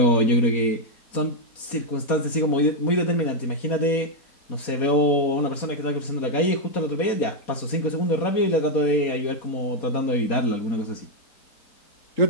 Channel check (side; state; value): right; late; 4.2 ms